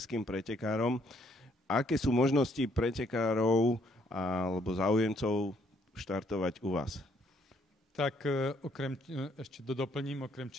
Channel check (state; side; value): normal; both; correlation 0.68